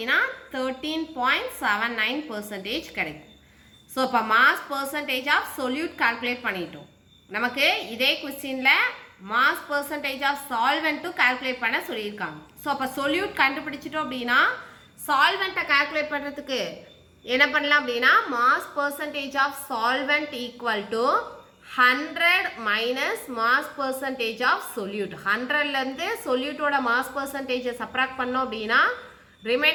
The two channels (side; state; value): both; identical; correlation 1.00